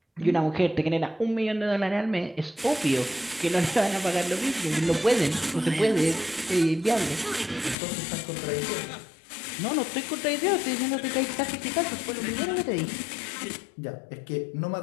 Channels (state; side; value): drops out; right; at 7.8 s